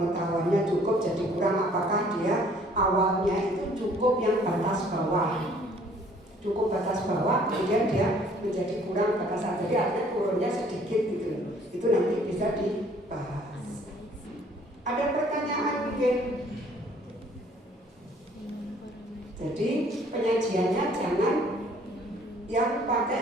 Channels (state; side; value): normal; both; correlation 0.58